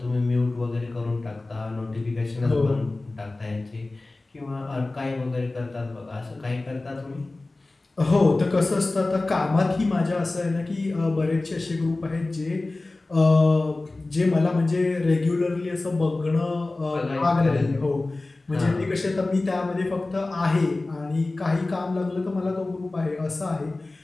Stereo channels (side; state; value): right; quieter; 3.1 dB